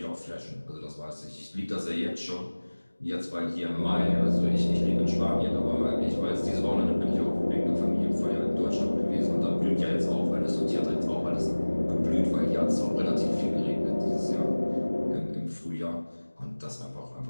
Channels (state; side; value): inverted; both; correlation -1.00